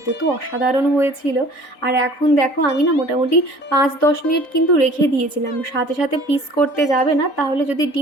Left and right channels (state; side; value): late; right; 3.9 ms